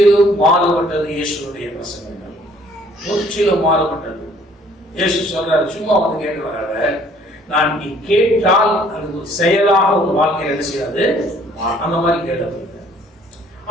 மாறுபட்டது இயேசுடைய பிரசங்கங்கள், முற்றிலும் மாறுபட்டது. இயேசு சொல்றாரு, சும்மா வந்து கேட்கிறாங்க, நான் நீ கேட்டால் அது ஒரு செயலாக ஒரு வாழ்க்கையில் என்ன செய்யாது, அந்த மாதிரி கேட்டது.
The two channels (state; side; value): normal; both; correlation 0.59